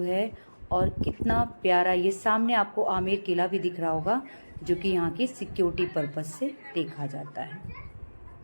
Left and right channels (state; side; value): inverted; both; correlation -1.00